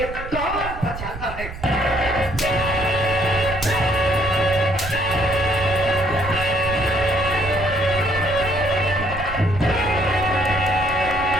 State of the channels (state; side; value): noise; right; rumble, 10 dB below the sound